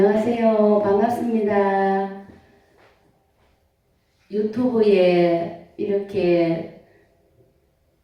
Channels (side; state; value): both; identical; correlation 1.00